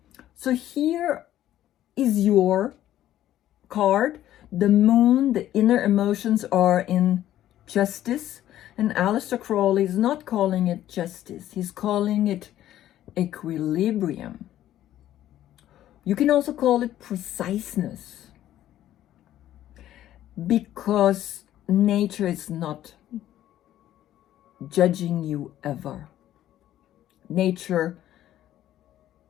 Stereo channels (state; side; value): quieter; right; 12.7 dB